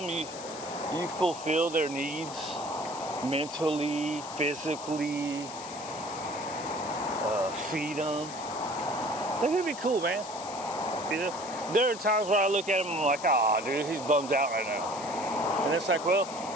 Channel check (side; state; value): left; noise; hiss, 13 dB below the sound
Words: you fulfill their needs mentally, physically, feed them, they're gonna be cool, man. You know, there are times where I look at him and I'm like, ah, dude, he's bummed out right now. And it's like, well,